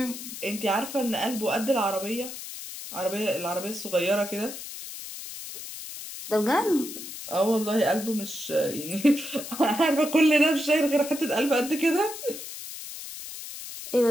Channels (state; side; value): noise; left; hiss, 10 dB below the sound